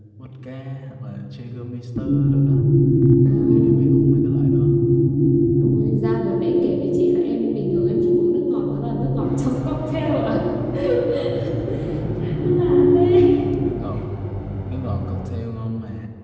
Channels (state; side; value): identical; both; correlation 1.00